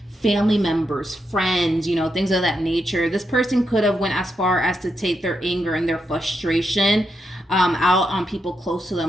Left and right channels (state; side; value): normal; both; correlation 0.83